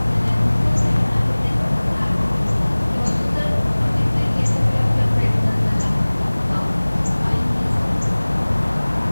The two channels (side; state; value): both; inverted; correlation -1.00